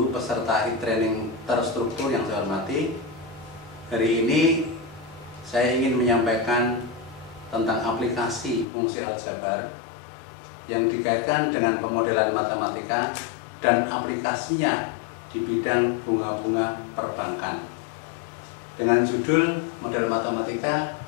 peserta e-training terstruktur yang saya hormati, hari ini saya ingin menyampaikan tentang aplikasi fungsi aljabar yang dikaitkan dengan pemodelan matematika dan aplikasinya di bidang bunga-bunga perbankan dengan judul model matematika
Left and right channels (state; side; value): drops out; right; at 8.7 s